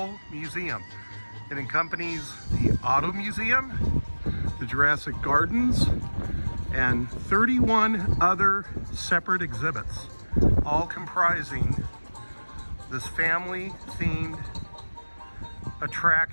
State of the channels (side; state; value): both; inverted; correlation -1.00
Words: Museum. It accompanies the Auto Museum, the Jurassic Gardens, and 31 other separate exhibits, all comprising this family-themed